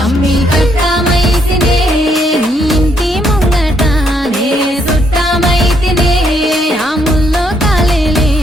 అమ్మి కట్టమైతినే నీ ఇంటి ముంగట నే చుట్టమైతినే ఆ ముల్లో కాలేలే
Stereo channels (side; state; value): both; normal; correlation 0.72